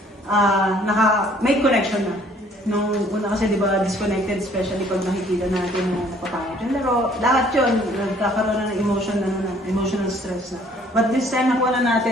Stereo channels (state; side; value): normal; both; correlation 0.59